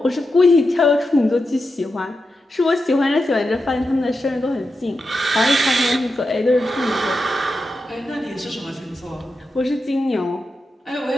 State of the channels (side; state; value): both; normal; correlation 0.89